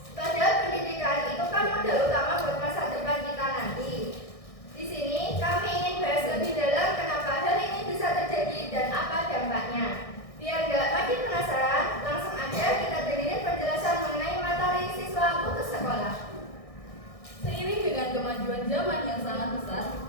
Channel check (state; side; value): late; right; 1.6 ms